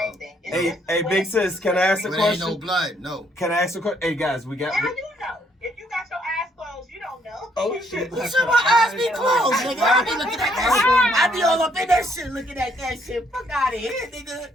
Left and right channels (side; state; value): both; normal; correlation 0.69